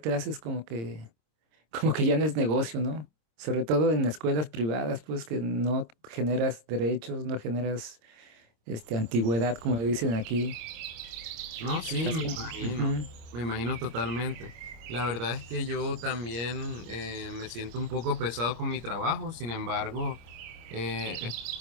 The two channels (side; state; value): left; late; 26 ms